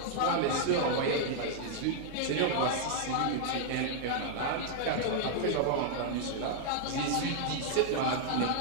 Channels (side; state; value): both; different; correlation -0.01